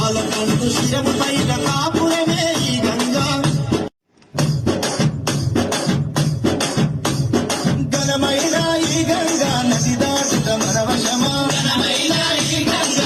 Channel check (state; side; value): identical; both; correlation 1.00